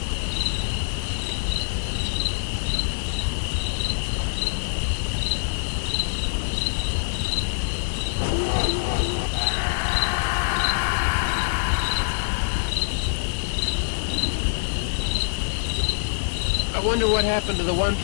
I wonder what happened to the one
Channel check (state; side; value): silent; right; digital silence